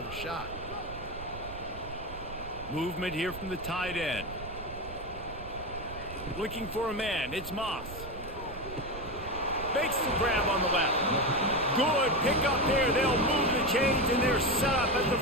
shot. Movement here from the tight end. Looking for a man. It's Moss. Makes the grab on the left. Good pick up there. They'll move the chains, and they're set up at the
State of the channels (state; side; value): noise; right; rumble, 13 dB below the sound